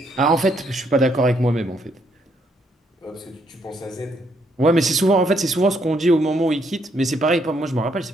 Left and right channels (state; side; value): normal; both; correlation 0.72